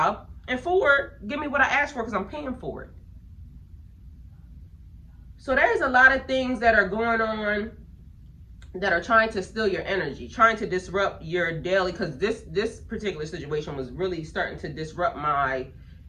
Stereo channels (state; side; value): identical; both; correlation 1.00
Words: and 4, give me what I asked for because I'm paying for it. So there's a lot of things that are going on that are trying to steal your energy, trying to disrupt your daily, because this particular situation was really starting to disrupt my,